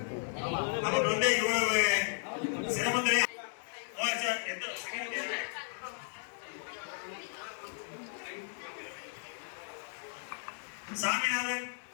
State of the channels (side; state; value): right; silent; 55 dB below the other